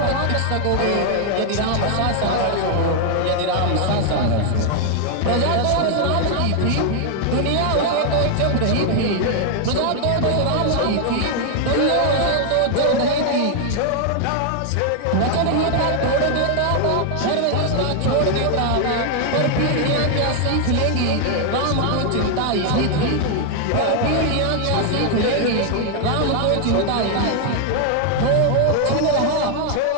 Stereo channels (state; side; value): different; both; correlation 0.00